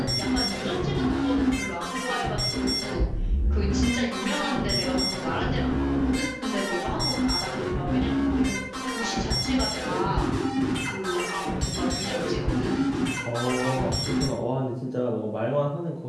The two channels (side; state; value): both; identical; correlation 1.00